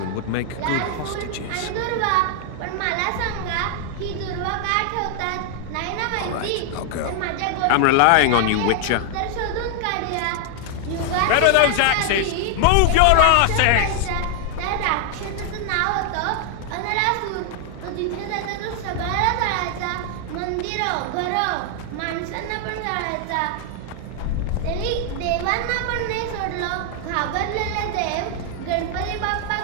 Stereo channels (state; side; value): different; both; correlation 0.00